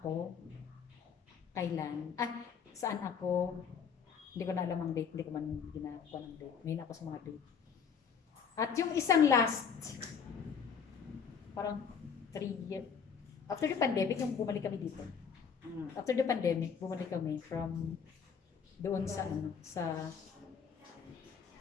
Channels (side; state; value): right; quieter; 6.7 dB